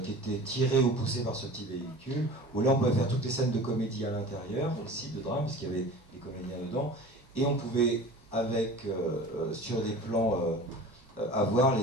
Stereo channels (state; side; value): normal; both; correlation 0.39